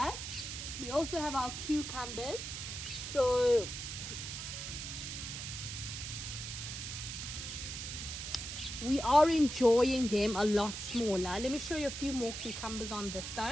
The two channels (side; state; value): right; noise; hiss, 6 dB below the sound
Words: we also have our cucumbers. So we are enjoying them a lot smaller. Let me show you a few more cucumbers on this